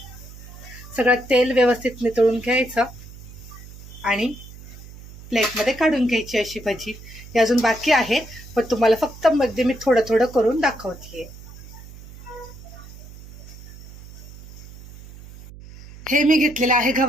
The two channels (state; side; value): noise; right; hum, 17 dB below the sound